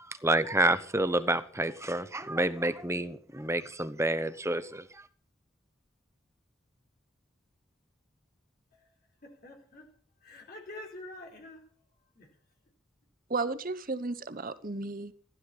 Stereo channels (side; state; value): both; normal; correlation 0.48